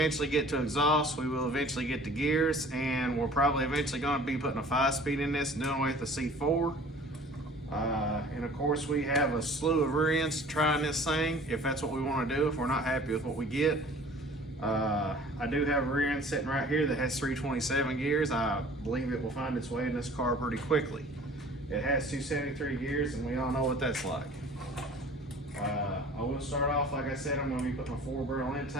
get to exhaust. We will eventually get to gears, and we're probably eventually going to be putting a 5-speed in this and doing away with the C4. And of course, we have a slew of rear ends to try in this thing if that's what we want to do, if we're not happy with what we get. I do have a rear end sitting right here that has 327 gears. I believe it will find its way in this car pretty quickly. It has 273 gears, and we all know what that's like. I will start off, like I said, I'm going to be putting a 4-barrel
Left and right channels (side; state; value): both; normal; correlation 0.47